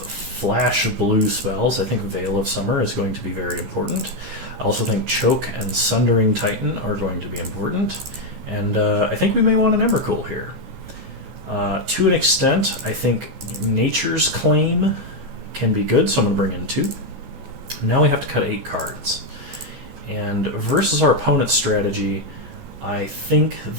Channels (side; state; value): left; late; 14 ms